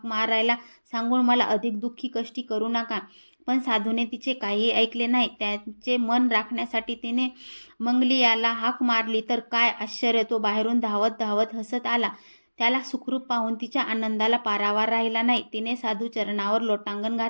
मारायला सांगून मला अधिक दुःखी कष्टी करू नका. पण साधूने तिचे काहीही ऐकले नाही. त्याचे मन राखण्यासाठी तिने मंगलियाला हाक मारली तर काय आश्चर्य, तो बाहेरून धावत हसत आला. त्याला सुखरूप पाहून तिच्या आनंदाला पारावार राहिला नाही. तिने साधू चरणावर लोटांगण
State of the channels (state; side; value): inverted; both; correlation -1.00